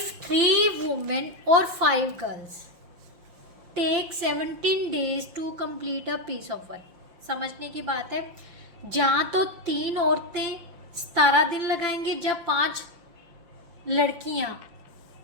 3 वुमेन और 5 girls take 17 days to complete a piece of work. समझने की बात है, जहाँ तो 3 औरतें 17 दिन लगाएंगे, जब 5 लड़कियाँ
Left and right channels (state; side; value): late; left; 5.7 ms